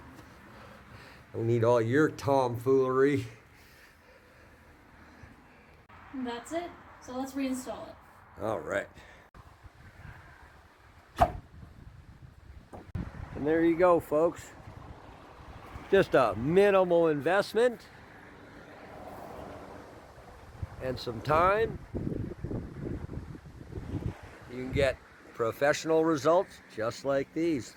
Don't need all your tomfoolery. And that's it. So let's reinstall it. All right. And there you go, folks. Just a minimal investment and some time. You can get professional results just like these.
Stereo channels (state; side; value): identical; both; correlation 1.00